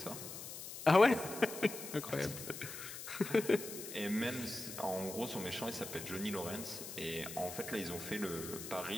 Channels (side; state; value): left; noise; hiss, 9 dB below the sound